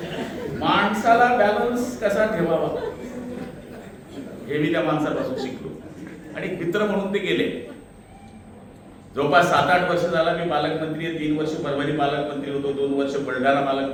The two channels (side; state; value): both; identical; correlation 1.00